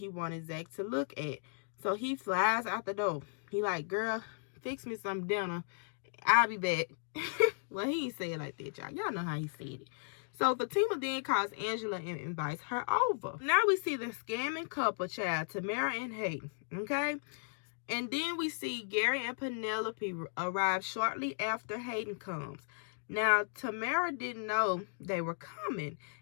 wanted Zach to look at. So he flies out the door. He like, girl, fix me some dinner. I'll be back. Well, he ain't say it like that, y'all. Y'all know how he said it. So Fatima then calls Angela and invites her over. Now we see the scamming couple, child, Tamara and Hayden, okay? And then we see Gary and Penelope arrive shortly after Hayden comes. Now, Tamara didn't know they were coming.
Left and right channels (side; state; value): right; silent; digital silence